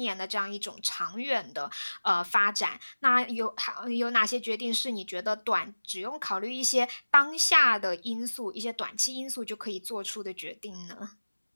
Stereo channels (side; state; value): both; inverted; correlation -1.00